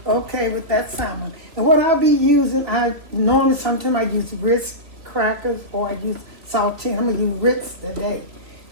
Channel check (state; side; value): late; left; 2.8 ms